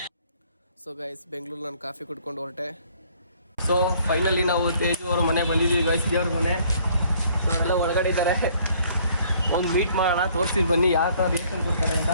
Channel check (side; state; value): both; inverted; correlation -0.61